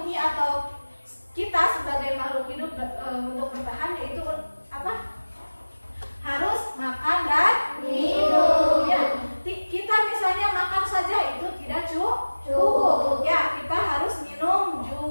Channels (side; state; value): both; inverted; correlation -1.00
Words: memenuhi atau kita sebagai makhluk hidup untuk bertahan yaitu apa? Harus makan dan minum. Ya, kita misalnya makan saja itu tidak cukup. Ya, kita harus minum